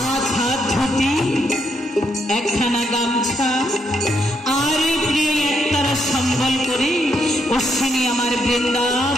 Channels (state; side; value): normal; both; correlation 0.77